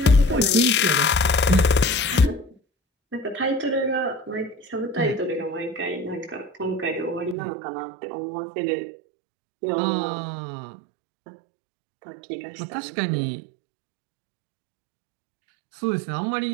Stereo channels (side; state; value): left; drops out; at 7.4 s